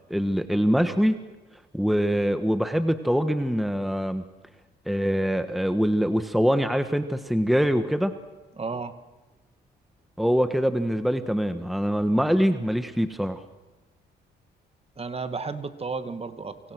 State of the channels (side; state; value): both; normal; correlation 0.96